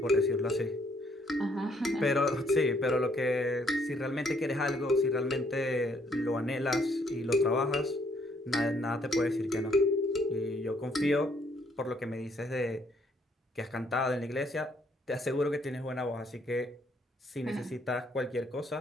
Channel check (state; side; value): normal; both; correlation 0.68